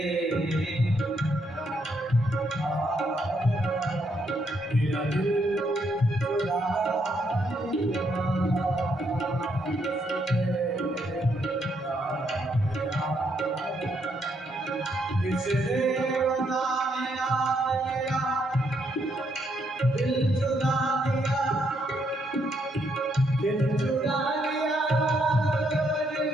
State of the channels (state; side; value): normal; both; correlation 0.75